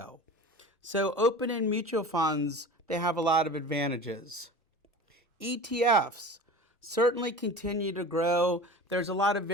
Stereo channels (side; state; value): both; normal; correlation 0.36